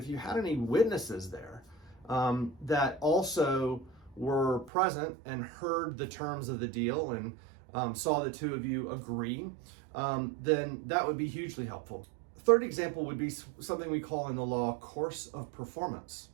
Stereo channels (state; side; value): drops out; left; at 4.7 s